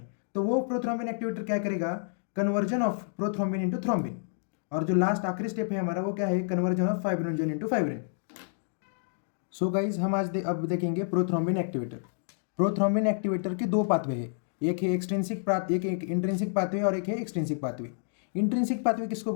तो वो प्रोथ्रोम्बिन एक्टिवेटर क्या करेगा? Conversion of prothrombin into thrombin. और जो लास्ट आखिरी स्टेप है हमारा, वो क्या है? Conversion of fibrinogen into fibrin. So guys, हम आज अब देखेंगे प्रोथ्रोम्बिन एक्टिवेटर। प्रोथ्रोम्बिन एक्टिवेटर के 2 पाथवे है, एक है एक इंट्रिंसिक पाथवे और एक है एक्सट्रिंसिक पाथवे। इंट्रिंसिक पाथवे किसको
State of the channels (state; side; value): silent; right; digital silence